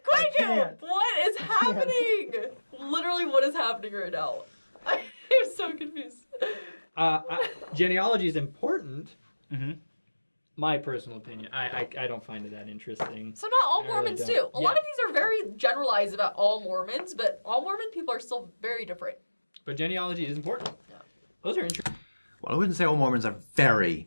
can't. What is happening? Literally, what is happening right now? I'm so confused. Genealogy is important. Mm-hmm. My personal opinion. I don't find it that interesting. So not all I really Mormons don't. do. A lot of these are very generalized about all Mormons, but all Mormon people are still very different. But genealogy is important. Yeah. Those are interesting. Well, I wouldn't say all Mormons are very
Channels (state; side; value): inverted; both; correlation -1.00